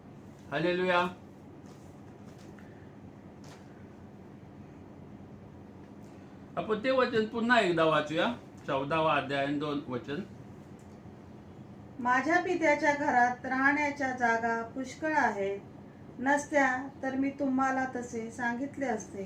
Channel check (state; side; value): identical; both; correlation 1.00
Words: हालेलुया. आपण ते वचन पुन्हा एकदा वाचूया. 14वा अध्याय 2 वचन. माझ्या पित्याच्या घरात राहण्याच्या जागा पुष्कळ आहेत, नसत्या तर मी तुम्हाला तसे सांगितले